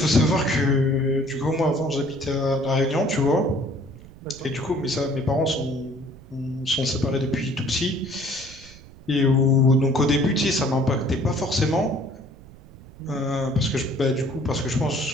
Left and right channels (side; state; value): right; noise; rumble, 20 dB below the sound